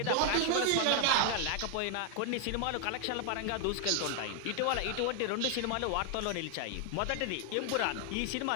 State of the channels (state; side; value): different; both; correlation 0.00